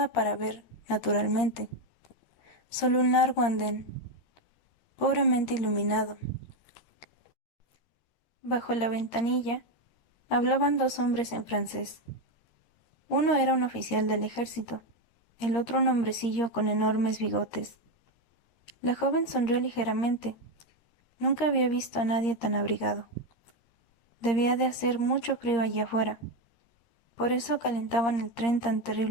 para ver, naturalmente. Solo un largo andén, pobremente iluminado. Bajo la ventanilla hablaban 2 hombres en francés. Uno era un oficial del ejército, el otro un hombrecillo con enormes bigotes. La joven sonrió ligeramente. Nunca había visto a nadie tan abrigado. Debía de hacer mucho frío allí afuera. Por eso calentaban el tren tan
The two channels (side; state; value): right; late; 13 ms